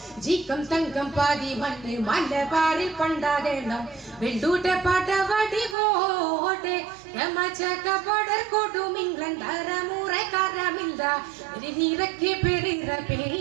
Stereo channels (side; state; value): left; drops out; at 5.8 s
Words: ജീക്കം തങ്കം പാതി മണ്ണ് മലബാറിൽ പണ്ടാകണം വെള്ളൂട്ടൽ പാട്ടവാടി പോട്ടെ യമജകപടർ കൊടും ഇംഗ്ലണ്ട് അറമുറക്കാരമില്ല വെരിനീരക്കി ബിരിറ